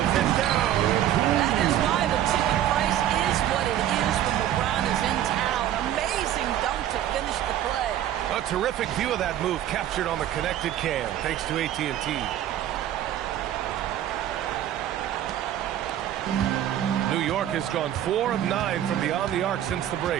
it down. That is why the ticket price is what it is when LeBron is in town. Amazing dunk to finish the play. A terrific view of that move captured on the connected cam, thanks to AT&T. New York has gone 4 of 9 from beyond the arc since the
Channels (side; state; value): left; quieter; 11.6 dB